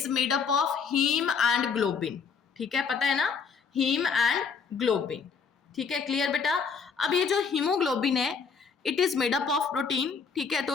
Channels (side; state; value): right; quieter; 5.8 dB